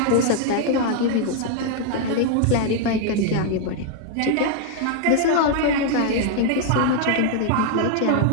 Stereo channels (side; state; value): both; different; correlation 0.00